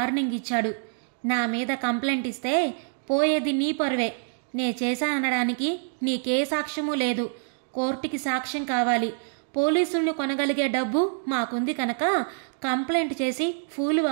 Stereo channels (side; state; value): left; silent; digital silence